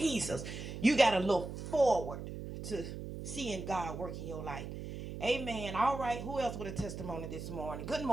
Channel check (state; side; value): noise; right; hum, 8 dB below the sound